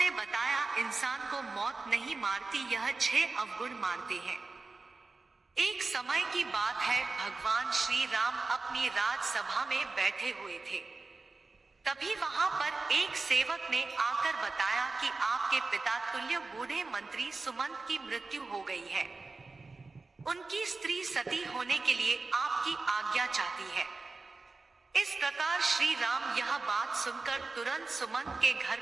बताया, इंसान को मौत नहीं मारती, यह 6 अवगुण मारते हैं। एक समय की बात है, भगवान श्री राम अपनी राजसभा में बैठे हुए थे। तभी वहां पर एक सेवक ने आकर बताया कि आपके पिता तुल्य बूढ़े मंत्री सुमंत की मृत्यु हो गई है। उनकी स्त्री सती होने के लिए आपकी आज्ञा चाहती है। इस प्रकार श्री राम यह बात सुनकर तुरंत सुमंत के घर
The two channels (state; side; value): quieter; left; 3.8 dB